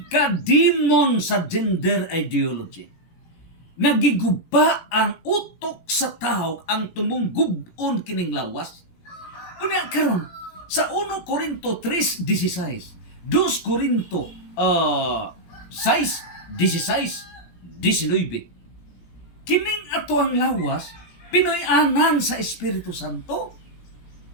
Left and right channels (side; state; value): right; late; 17 ms